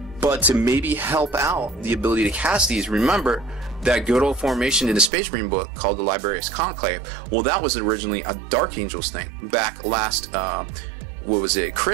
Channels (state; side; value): drops out; left; at 5.1 s